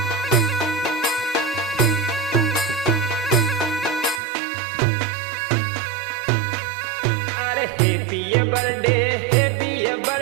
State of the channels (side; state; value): left; drops out; at 4.2 s